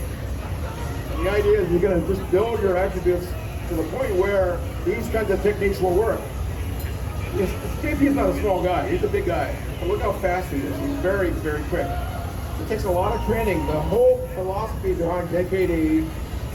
the idea is you're going to just build your attributes to the point where these kinds of techniques will work. JP's not a small guy, he's a big guy. And look how fast he is. He's very, very quick. It takes a lot of training. The whole philosophy behind JKD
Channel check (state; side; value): identical; both; correlation 1.00